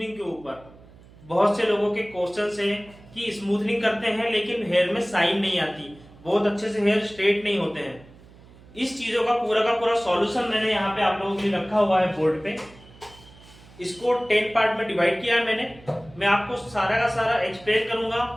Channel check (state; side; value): noise; right; hum, 23 dB below the sound